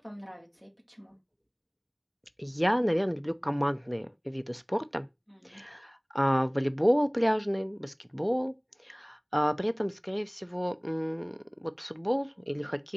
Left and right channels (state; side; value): identical; both; correlation 1.00